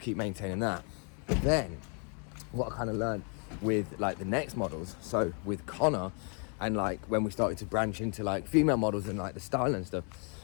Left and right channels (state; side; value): quieter; right; 38.7 dB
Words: keep maintaining that. But then, what I kind of learned with like the next models, so with Connor, and like when we started to branch into like female models and like the style and stuff,